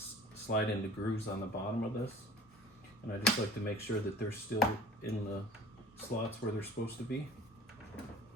slide into grooves on the bottom of this, and I just like to make sure that they're still in the slots where they're supposed to be.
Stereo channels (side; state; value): both; normal; correlation 0.45